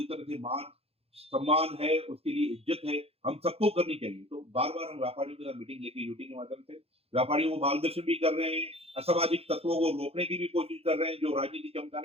तरह से मान सम्मान है, उसके लिए इज्जत है, हम सबको करनी चाहिए। तो बार बार हम व्यापारियों के साथ मीटिंग लेके यूटी के माध्यम से व्यापारियों को मार्गदर्शन भी कर रहे हैं, असामाजिक तत्वों को रोकने की भी कोशिश कर रहे हैं जो राजनीति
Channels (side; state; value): left; late; 0.29 ms